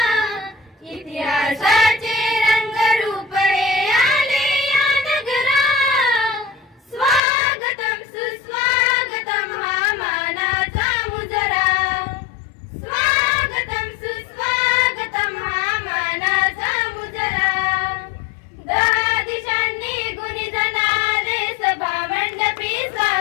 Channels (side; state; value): right; drops out; at 7.2 s